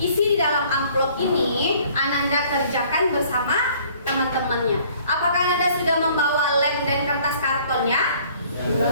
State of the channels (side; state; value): both; inverted; correlation -0.57